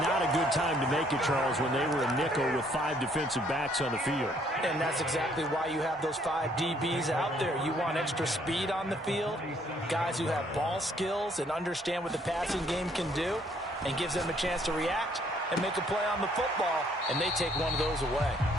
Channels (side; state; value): both; normal; correlation 0.65